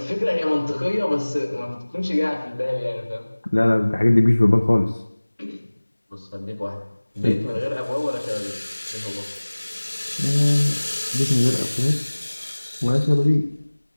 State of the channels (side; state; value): both; inverted; correlation -1.00